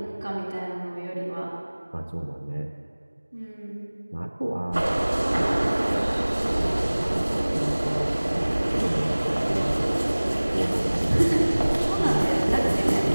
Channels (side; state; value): both; inverted; correlation -1.00